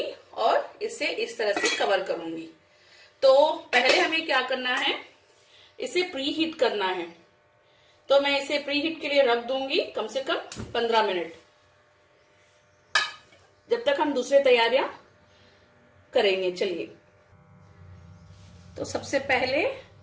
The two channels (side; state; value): both; identical; correlation 1.00